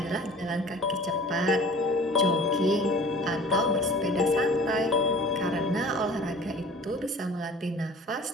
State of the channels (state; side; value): normal; both; correlation 0.45